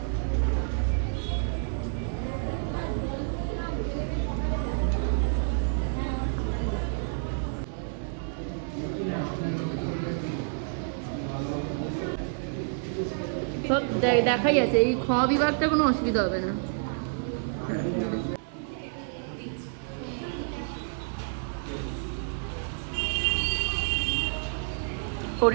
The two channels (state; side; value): silent; left; digital silence